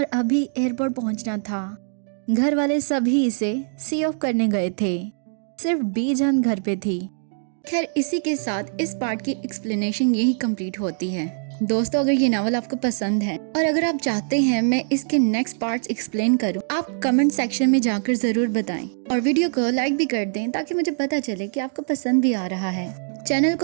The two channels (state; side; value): silent; left; digital silence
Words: ابھی ایئرپورٹ پہنچنا تھا۔ گھر والے سبھی اسے سی آف کرنے گئے تھے، صرف بی جان گھر پہ تھی۔ خیر، اسی کے ساتھ اس پارٹ کی ایکسپلینیشن یہی کمپلیٹ ہوتی ہے۔ دوستو، اگر یہ ناول آپ کو پسند ہے اور اگر آپ چاہتے ہیں میں اس کے نیکسٹ پارٹس ایکسپلین کروں، آپ کمنٹ سیکشن میں جا کر ضرور بتائیں، اور ویڈیو کو لائک بھی کر دیں تاکہ مجھے پتا چلے کہ آپ کو پسند بھی آ رہا ہے۔ چینل